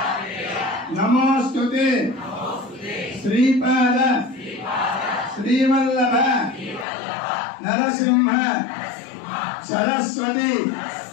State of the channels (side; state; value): right; drops out; at 6.9 s